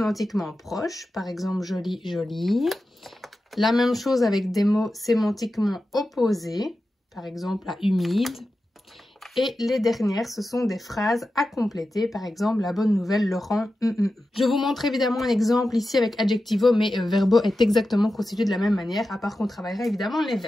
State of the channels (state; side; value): normal; both; correlation 0.92